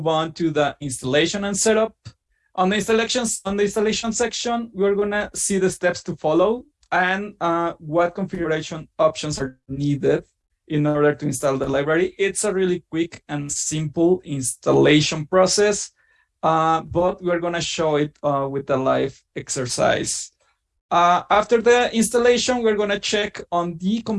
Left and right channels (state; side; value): identical; both; correlation 1.00